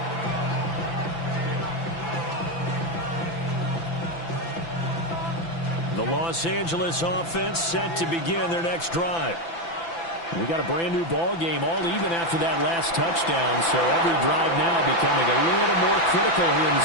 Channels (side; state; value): right; late; 6.0 ms